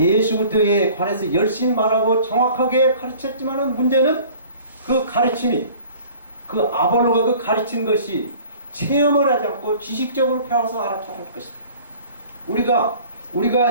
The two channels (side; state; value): both; inverted; correlation -0.48